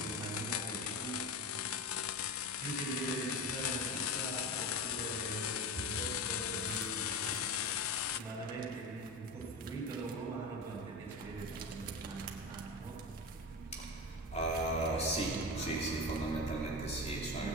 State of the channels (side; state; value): both; normal; correlation 0.25